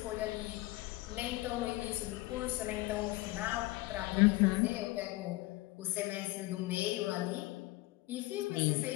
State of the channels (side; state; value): right; quieter; 19.8 dB